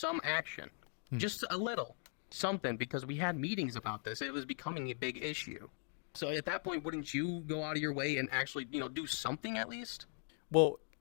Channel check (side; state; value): right; silent; 51 dB below the other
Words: action, just a little something, because we had meetings about this. It was becoming a big issue. So at that point, wouldn't you go out of your way and actually, do something at least? Well,